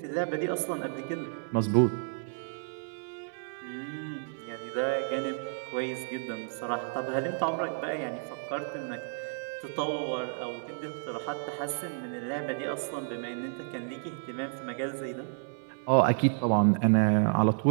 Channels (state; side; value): silent; left; 57 dB below the other